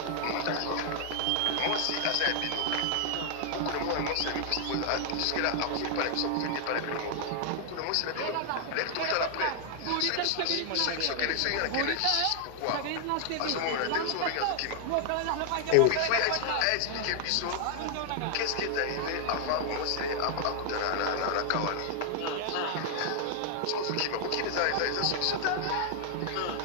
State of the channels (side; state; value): both; different; correlation 0.00